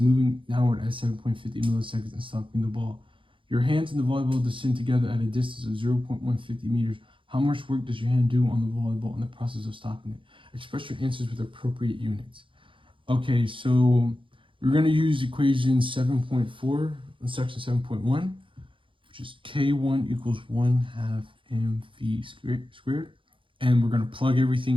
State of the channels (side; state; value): left; late; 0.25 ms